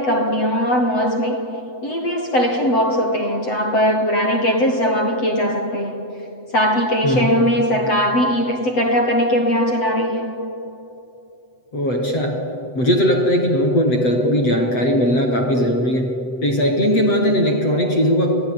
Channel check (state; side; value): late; right; 8.0 ms